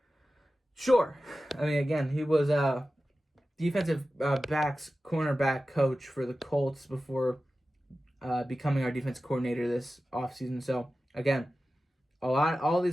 sure. I mean, again, he was defensive cornerback coach for the Colts before becoming our defensive coordinator this offseason. So again, all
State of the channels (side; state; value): both; normal; correlation 0.94